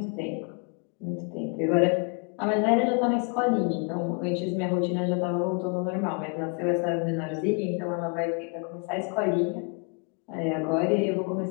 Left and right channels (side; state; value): right; quieter; 35.2 dB